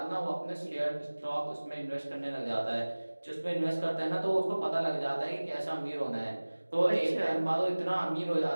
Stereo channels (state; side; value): inverted; both; correlation -1.00